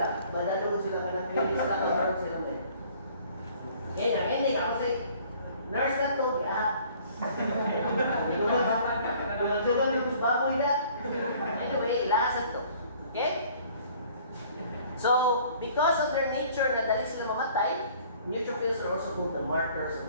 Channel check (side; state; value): both; inverted; correlation -0.55